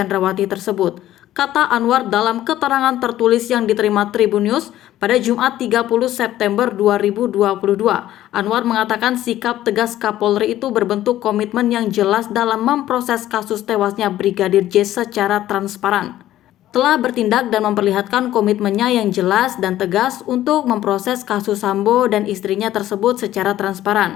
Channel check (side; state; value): right; quieter; 13.5 dB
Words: tersebut, kata Anwar dalam keterangan tertulis yang diterima Tribun News pada Jumat 30 September 2022. Anwar mengatakan sikap tegas Kapolri itu berbentuk komitmen yang jelas dalam memproses kasus tewasnya Brigadir J secara transparan. Telah bertindak dan memperlihatkan komitmennya yang jelas dan tegas untuk memproses kasus Sambo dan istrinya tersebut secara